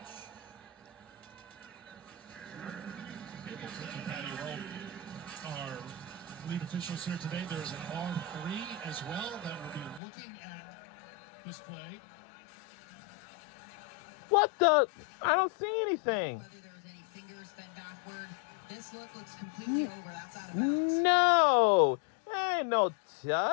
Our lead officials here today. There's an R3 as well that will be looking at this play. What the? I don't see anything. Whether there was any fingers bent backward, this look looks completely over. That's out of bounds. No, ain't no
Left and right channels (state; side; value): drops out; right; at 10.0 s